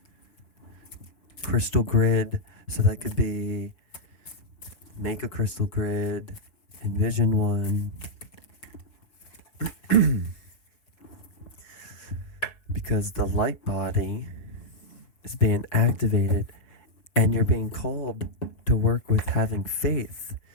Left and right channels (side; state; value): right; late; 5.5 ms